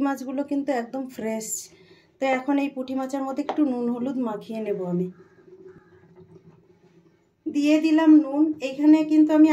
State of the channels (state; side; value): identical; both; correlation 1.00